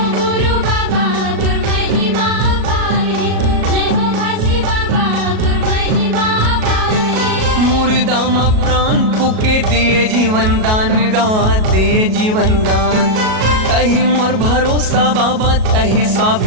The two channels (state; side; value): late; left; 37 ms